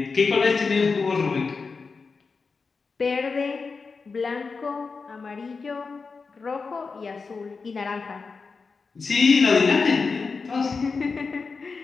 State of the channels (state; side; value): quieter; right; 4.7 dB